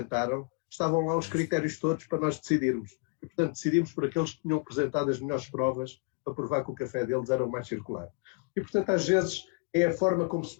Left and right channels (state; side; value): quieter; right; 34.1 dB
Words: estavam lá os critérios todos para nós decidirmos. E, portanto, decidimos por aqueles que tinham apresentado as melhores provas para provar que o café deles era o mais circular. E, portanto, às vezes é a forma como se